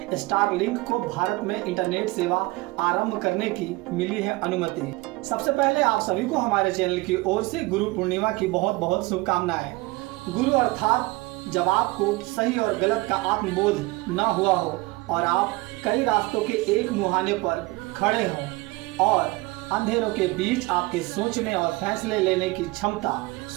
स्टारलिंक को भारत में इंटरनेट सेवा आरंभ करने की मिली है अनुमति। सबसे पहले आप सभी को हमारे चैनल की ओर से गुरु पूर्णिमा की बहुत बहुत शुभकामनाएं। गुरु अर्थात जब आपको सही और गलत का आत्मबोध न हुआ हो और आप कई रास्तों के एक मुहाने पर खड़े हों और अंधेरों के बीच आपके सोचने और फैसले लेने की क्षमता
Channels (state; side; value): quieter; left; 22.0 dB